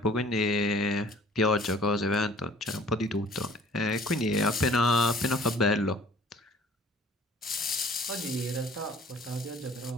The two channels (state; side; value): normal; both; correlation 0.52